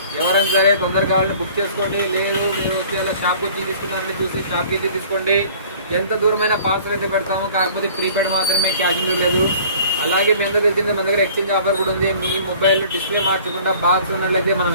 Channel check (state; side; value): inverted; both; correlation -0.49